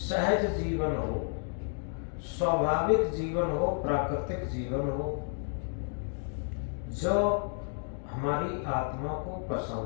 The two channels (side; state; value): right; silent; 57 dB below the other